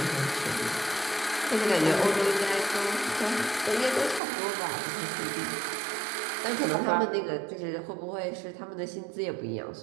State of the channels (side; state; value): left; drops out; at 4.2 s